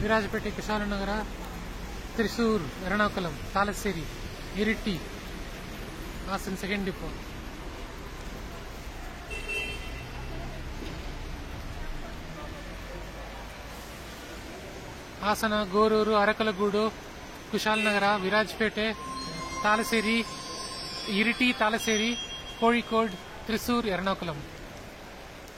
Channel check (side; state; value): both; identical; correlation 1.00